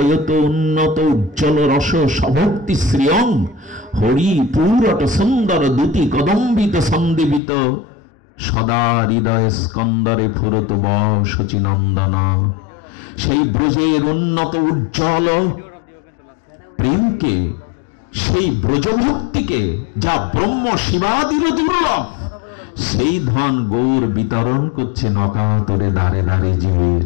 উন্নত উজ্জ্বল রস সভক্তি শ্রিয়ম, হরি পুরট সুন্দর দুতি কদম্বিত সন্দীপিত, সদা হৃদয় স্কন্দরে ফুরত বশচিনন্দন। সেই ব্রজের উন্নত উজ্জ্বল প্রেমকে, সেই ব্রজভক্তিকে, যা ব্রহ্ম শিবাদির দুর্লভ, সেই ধন গৌর বিতরণ করছে নকাতরে দাঁড়ে দাঁড়ে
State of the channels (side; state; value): right; drops out; at 7.4 s